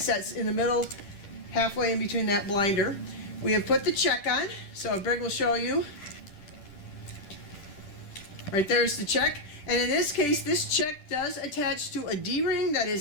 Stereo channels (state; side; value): late; right; 10 ms